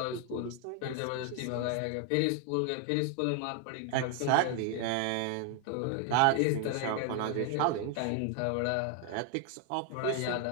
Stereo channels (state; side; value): different; both; correlation 0.00